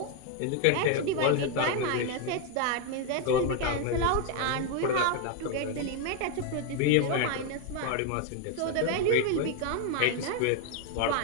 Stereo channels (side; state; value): both; different; correlation 0.01